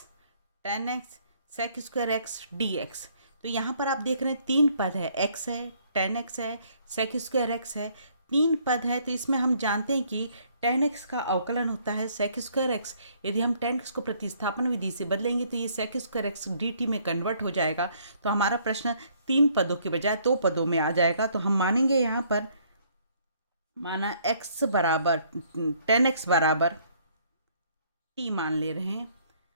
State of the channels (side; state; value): both; inverted; correlation -0.64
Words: tan x sec² x dx। तो यहाँ पर आप देख रहे हैं 3 पद है, x है, tan x है, sec² x है, 3 पद है। तो इसमें हम जानते हैं कि tan x का अवकलन होता है sec² x। यदि हम tan x को प्रतिस्थापन विधि से बदलेंगे तो ये sec² x dt में कन्वर्ट हो जाएगा। तो हमारा प्रश्न 3 पदों के बजाय 2 पदों में आ जाएगा। तो हम मानेंगे यहाँ पर, माना x बराबर tan x बराबर t मान ले रहे हैं।